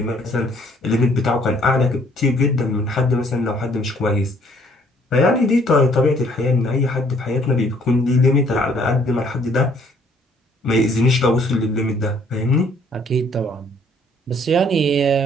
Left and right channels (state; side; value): normal; both; correlation 0.62